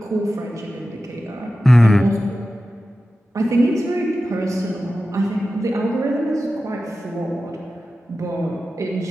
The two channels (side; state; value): both; normal; correlation 0.93